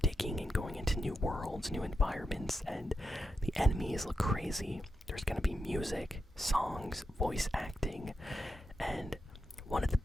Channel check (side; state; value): both; normal; correlation 0.87